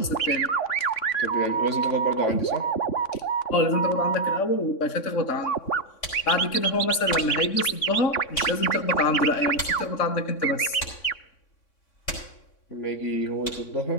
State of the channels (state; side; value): late; right; 3.6 ms